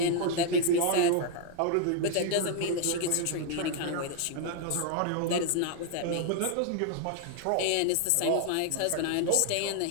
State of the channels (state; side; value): different; both; correlation 0.00